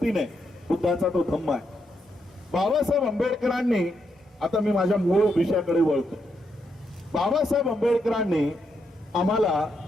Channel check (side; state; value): both; normal; correlation 0.80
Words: बुद्धाचा तो धम्म आहे. बाबासाहेब आंबेडकरांनी, आता मी माझ्या मूळ विषयाकडे वळतो. बाबासाहेब आंबेडकरांनी आम्हाला